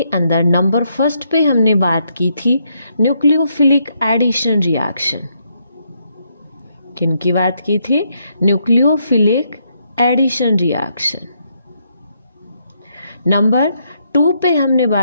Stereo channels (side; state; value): both; inverted; correlation -0.76